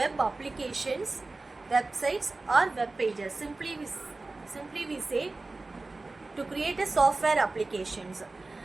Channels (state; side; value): quieter; left; 3.3 dB